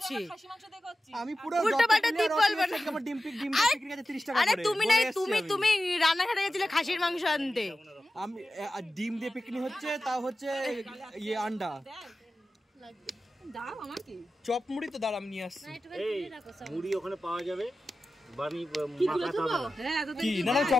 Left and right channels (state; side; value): normal; both; correlation 0.94